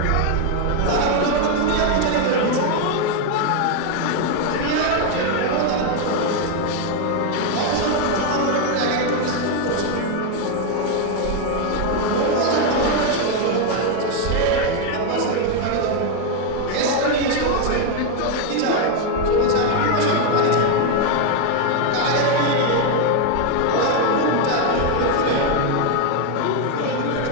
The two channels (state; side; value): different; both; correlation 0.01